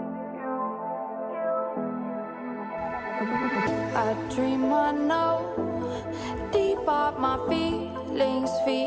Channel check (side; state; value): both; identical; correlation 1.00